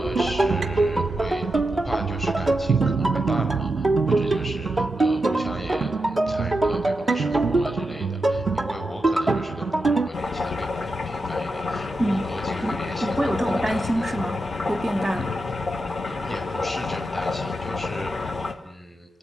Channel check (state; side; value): normal; both; correlation 0.88